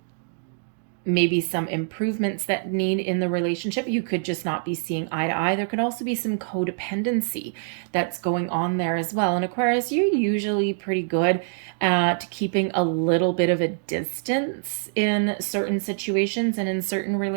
Maybe some improvements that need in the relationship. You could just not be seeing eye to eye. There could also be some codependency that's going on there as well. And Aquarius, you're usually pretty good at keeping a little bit of a distance in certain situations and in certain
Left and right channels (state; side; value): silent; left; digital silence